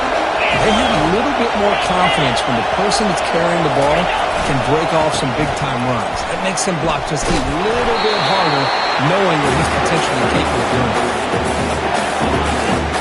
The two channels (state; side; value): identical; both; correlation 1.00